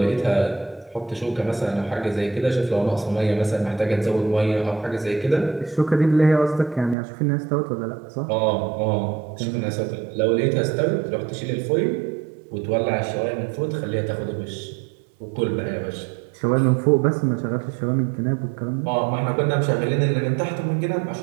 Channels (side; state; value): left; drops out; at 7.0 s